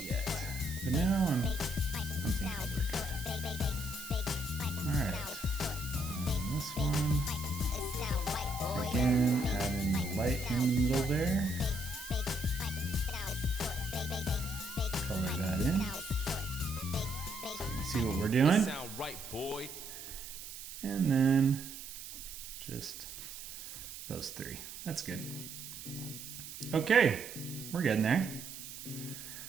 yet, but now I'm thinking we're good. Alright. This one, again, add in the light in the middle there, color that in, so you can see what we're doing, and then just those three. That's good. Okay, we're getting there.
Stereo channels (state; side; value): noise; right; hiss, 11 dB below the sound